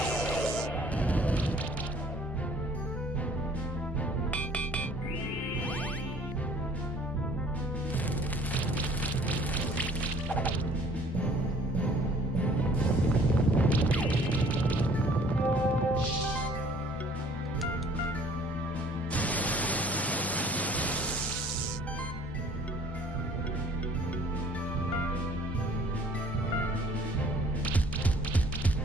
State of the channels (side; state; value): both; normal; correlation 0.55